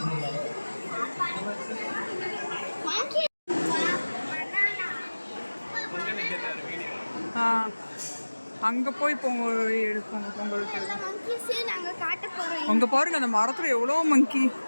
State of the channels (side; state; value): both; inverted; correlation -1.00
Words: அங்க போய் பொங்கல் எடுப்போங்க. பொங்கல் அங்க பாருங்க, அந்த மரத்துல எவ்வளவு மங்கி.